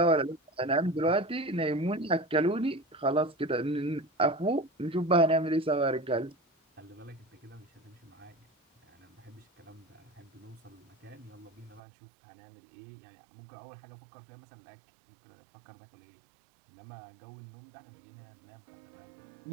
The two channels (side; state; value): left; drops out; at 11.8 s